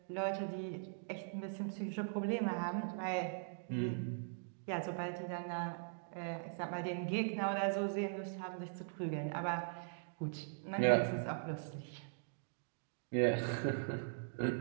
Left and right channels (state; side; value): silent; left; digital silence